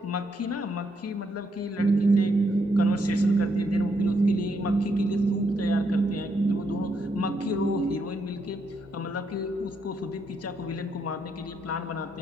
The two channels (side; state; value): both; normal; correlation 0.77